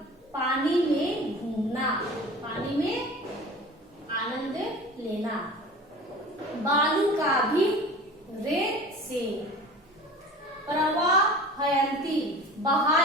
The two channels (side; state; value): both; normal; correlation 0.39